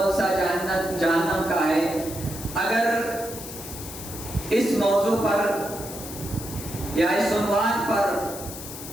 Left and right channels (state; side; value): noise; left; hiss, 11 dB below the sound